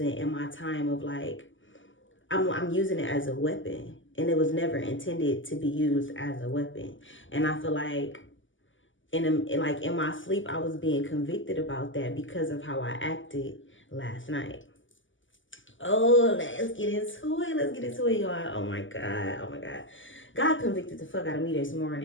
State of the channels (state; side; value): late; right; 0.56 ms